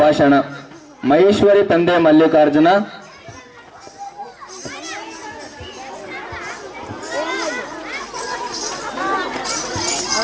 ಭಾಷಣ. ಮಹೇಶ್ವರಿ ತಂದೆ Mallikarjuna.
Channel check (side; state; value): both; identical; correlation 1.00